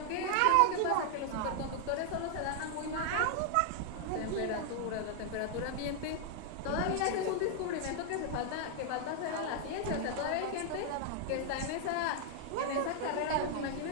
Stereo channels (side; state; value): both; different; correlation 0.00